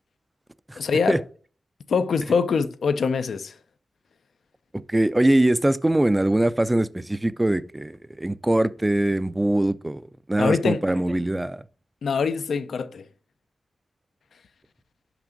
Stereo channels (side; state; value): both; normal; correlation 0.94